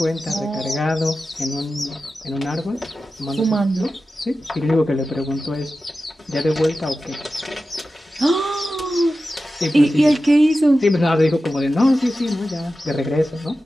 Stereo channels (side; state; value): both; normal; correlation 0.93